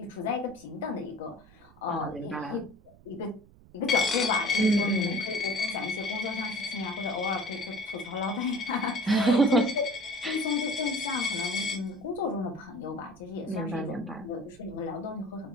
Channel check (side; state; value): right; noise; rumble, 25 dB below the sound